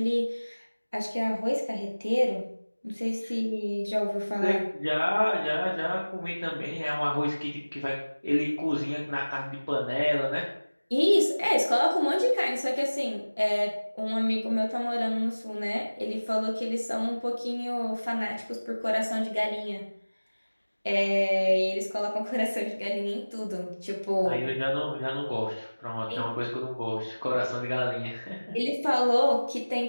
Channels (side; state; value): both; inverted; correlation -1.00